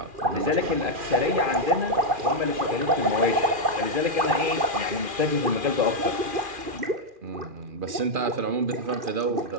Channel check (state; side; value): late; left; 2.4 ms